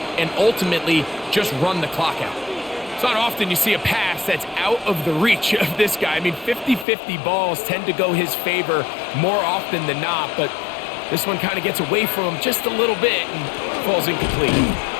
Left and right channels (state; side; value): drops out; right; at 6.9 s